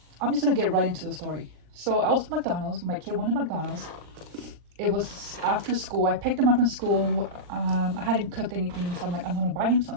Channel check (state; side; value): late; left; 40 ms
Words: I'm just gonna get right into the story. So I was at McDonald's. My kid wanted McDonald's. It was after school. I picked him up from school. I hadn't cooked anything, so I'm like, I'm gonna buy him